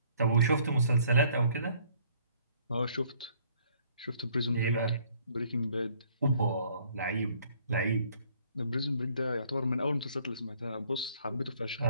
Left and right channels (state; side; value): inverted; both; correlation -0.61